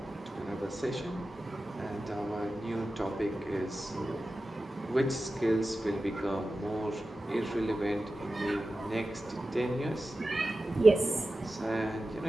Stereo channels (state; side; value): normal; both; correlation 0.94